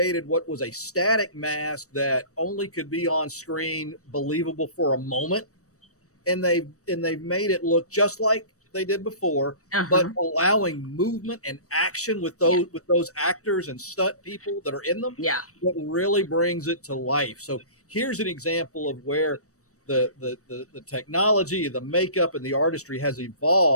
what was a static mask that only could be on screen, believable for a moment, and they've made it look just like they did before, but allowing movement and action with those actors and stunt people that are in them. Yeah, that really brings it to life. So here's an example of where the technology, the makeup, and the artistry has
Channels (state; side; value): late; right; 0.65 ms